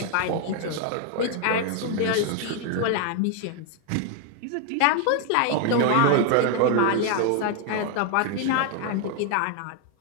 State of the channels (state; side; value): different; both; correlation 0.01